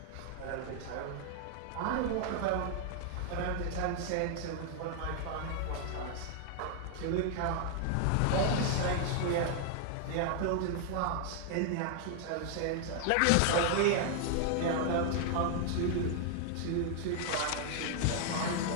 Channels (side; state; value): both; different; correlation 0.00